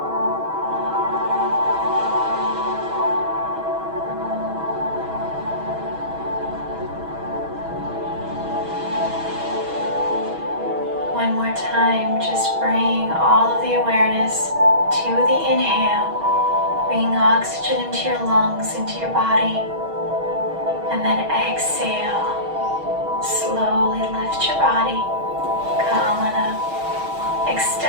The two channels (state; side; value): late; left; 6.3 ms